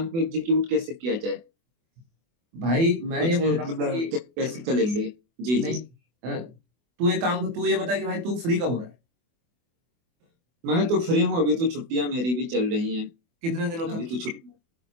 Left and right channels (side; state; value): left; late; 24 ms